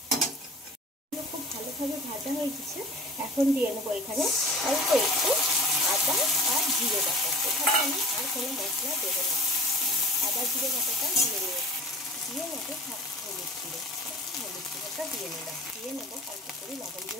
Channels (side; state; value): both; normal; correlation 0.41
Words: খুব ভালোভাবে ভাজা হয়ে গেছে। এখন দিয়ে নেবো এখানে অল্প একটু আদা আর জিরে বাটা। এখানে আমি আর কোনো মশলা দেবো না, আদা জিরে বাটাটা দিয়ে নেবো হলুদ গুঁড়োটা দিয়ে নেবো অল্প করে লবণ,